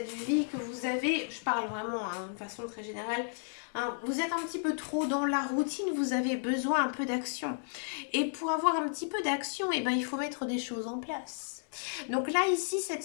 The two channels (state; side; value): silent; right; digital silence